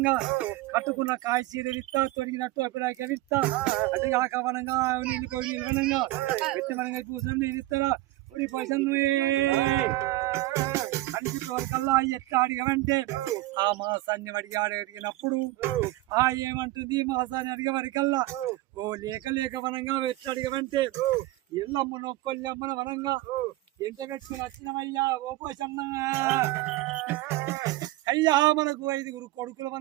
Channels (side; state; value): left; quieter; 18.1 dB